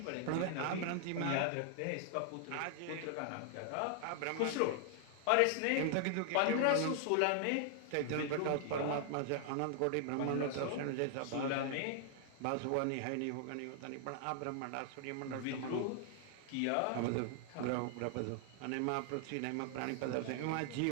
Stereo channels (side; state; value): both; different; correlation 0.00